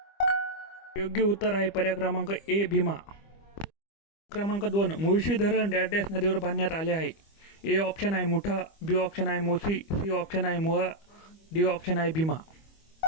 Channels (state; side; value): late; right; 25 ms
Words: योग्य उत्तर आहे पर्याय क्रमांक ए भीमा. क्रमांक 2, मुळशी धरण डॅश डॅश नदीवर बांधण्यात आले आहे. ए ऑप्शन आहे मुठा, बी ऑप्शन आहे मोसी, सी ऑप्शन आहे मुळा, डी ऑप्शन आहे भीमा.